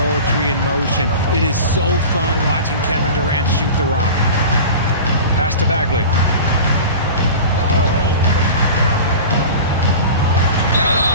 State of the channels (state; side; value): inverted; both; correlation -0.34